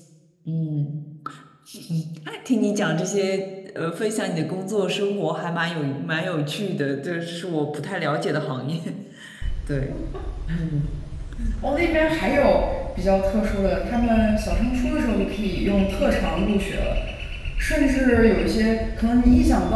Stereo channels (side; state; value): both; identical; correlation 1.00